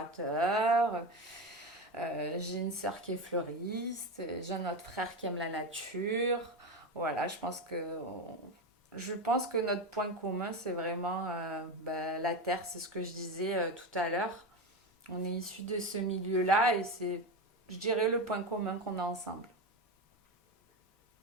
J'ai une sœur qui est fleuriste. J'ai un autre frère qui aime la nature. Voilà, je pense que notre point commun, c'est vraiment bah, la terre. C'est ce que je disais tout à l'heure. On est issus de ce milieu-là et c'est, je dirais, le point commun qu'on a ensemble.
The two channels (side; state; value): both; normal; correlation 0.18